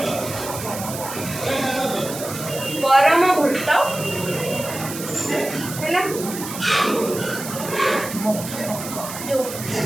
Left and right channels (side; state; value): right; noise; hiss, 9 dB below the sound